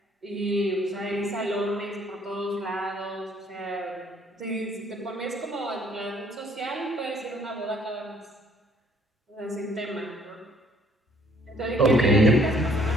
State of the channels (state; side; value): normal; both; correlation 0.62